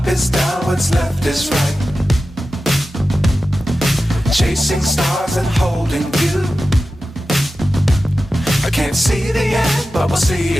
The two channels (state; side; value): normal; both; correlation 0.93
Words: is down, what's left is right. Chasing stars and holding you. I can't see the end, but we'll see